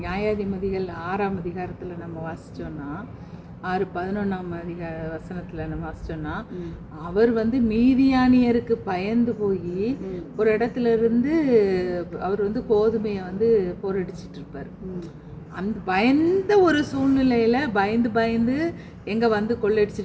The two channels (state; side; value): identical; both; correlation 1.00